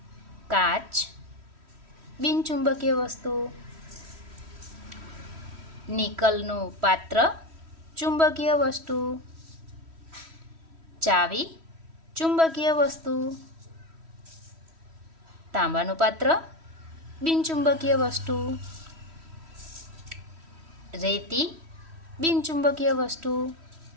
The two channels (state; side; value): late; left; 3.1 ms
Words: काच, बिनचुंबकीय वस्तु। निकलનું पात्र, चुंबकीय वस्तु। चावी, चुंबकीय वस्तु। तांबाનું पात्र, बिनचुंबकीय वस्तु। रेती, बिनचुंबकीय वस्तु।